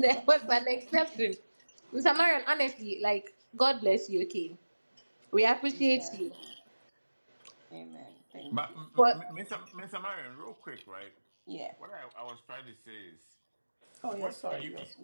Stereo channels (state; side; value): inverted; both; correlation -1.00